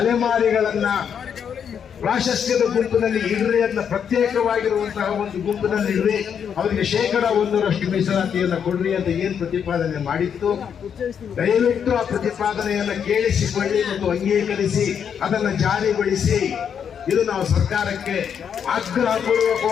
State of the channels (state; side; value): quieter; right; 7.8 dB